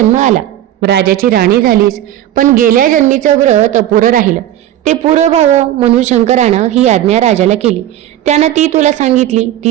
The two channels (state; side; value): quieter; left; 12.5 dB